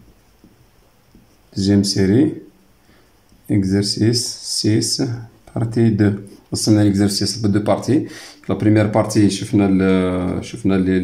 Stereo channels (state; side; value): identical; both; correlation 1.00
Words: deuxième série exercice 6 partie 2. قسمنا l'exercice ب 2 parties. La première partie شفنا